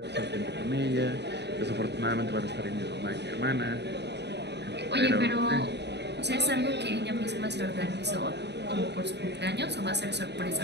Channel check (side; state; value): left; late; 0.50 ms